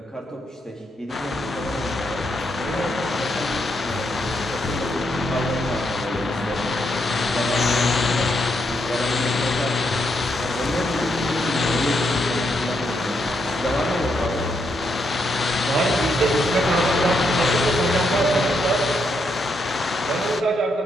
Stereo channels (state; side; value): normal; both; correlation 0.79